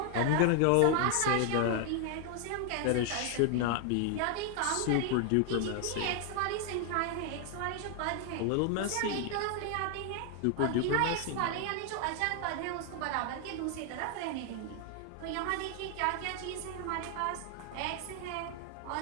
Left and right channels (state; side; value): different; both; correlation 0.00